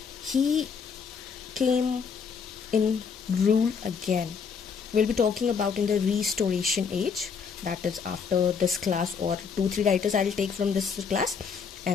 He came in rule again. We'll be talking about in the Restoration age. That is after this class, or 2-3 writers I'll take from this class,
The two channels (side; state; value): right; quieter; 6.0 dB